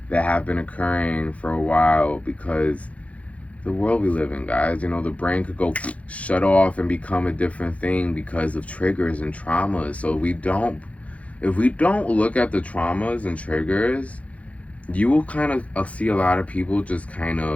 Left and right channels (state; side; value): late; right; 0.065 ms